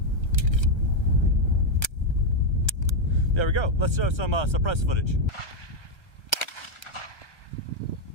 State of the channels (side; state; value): right; late; 1.3 ms